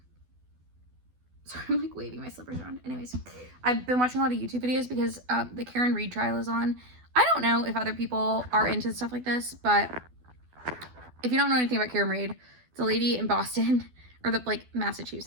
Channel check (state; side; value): late; left; 12 ms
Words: sorry, I'm like waving my slippers around. Anyways, I've been watching a lot of YouTube videos because the Karen Reed trial is on. I don't know if other people are into stuff like this, but if you don't know anything about Karen Reed, It's a lady in Boston, or